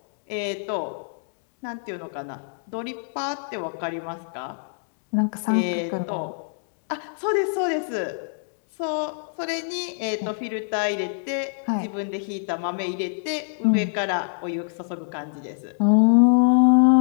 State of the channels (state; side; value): silent; right; digital silence